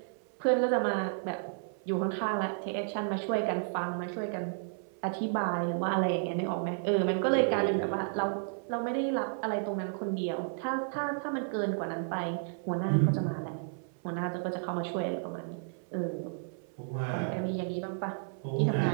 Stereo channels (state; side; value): silent; left; 56 dB below the other